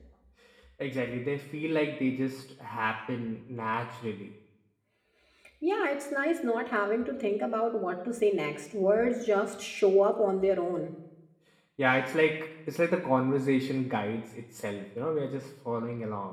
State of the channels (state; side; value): identical; both; correlation 1.00